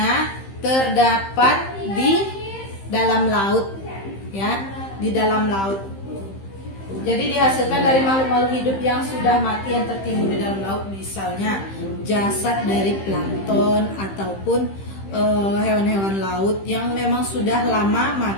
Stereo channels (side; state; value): right; late; 15 ms